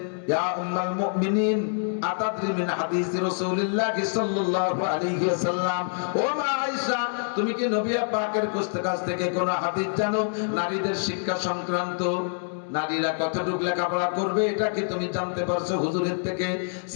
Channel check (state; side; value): silent; right; digital silence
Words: ইয়া উম্মাল মুমিনিন আতাদরি মিন হাদিস রাসূলুল্লাহ সাল্লাল্লাহু আলাইহি ওয়াসাল্লাম, ও মা আয়েশা, তুমি কি নবী পাকের কাছ থেকে কোন হাদিস জানো নারীদের শিক্ষা সংক্রান্ত? নারীরা কতটুকু লেখাপড়া করবে এটা কি তুমি জানতে পারছো হুজুরের থেকে?